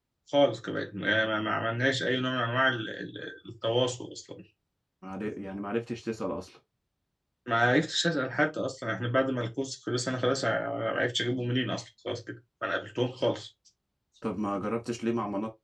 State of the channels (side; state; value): both; identical; correlation 1.00